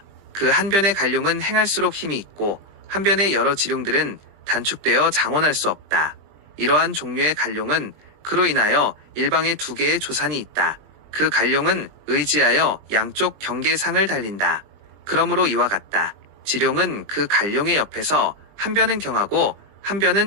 그 한 변의 갈룡은 행할수록 힘이 있고 한 변의 여러 지룡들은 단축되어 장원할 수 없다. 이러한 종류의 갈룡은 그로 인하여 일방에 두 개의 조산이 있다. 그 갈룡은 의지하여 양쪽 경계상을 달린다. 그러므로 이와 같다. 지룡은 그 갈룡의 옆에서 한 변은 경하고 한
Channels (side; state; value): left; late; 20 ms